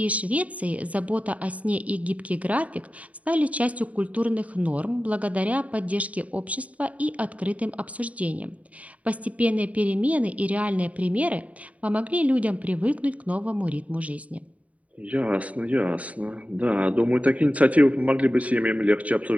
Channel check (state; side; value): late; left; 0.068 ms